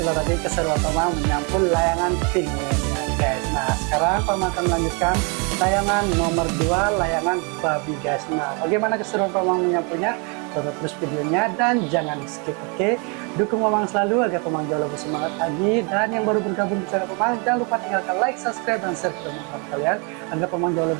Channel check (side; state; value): left; quieter; 34.0 dB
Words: tadi keseruan Penggaris menyampul layangan Pingwin ya guys. Nah sekarang Penggaris akan melanjutkan layangan nomor 2, layangan babi guys. Nah bagaimana keseruan Penggaris menyampulnya? Tonton terus videonya dan jangan di skip, oke? Dukung Penggaris selalu agar Penggaris jauh lebih semangat lagi. Dan yang baru bergabung di channel Penggaris, jangan lupa tinggalkan like, subscribe, dan share ke teman-teman kalian agar Penggaris jauh